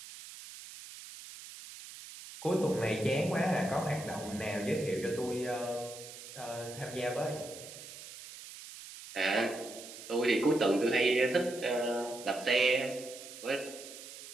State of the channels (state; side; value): noise; right; hiss, 14 dB below the sound